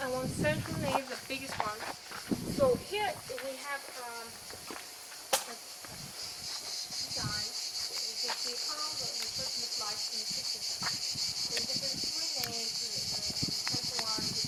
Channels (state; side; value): identical; both; correlation 1.00